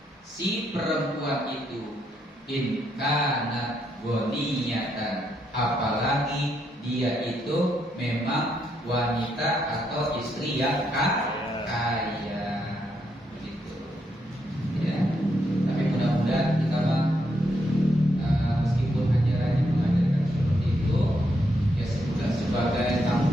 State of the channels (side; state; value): both; normal; correlation 0.78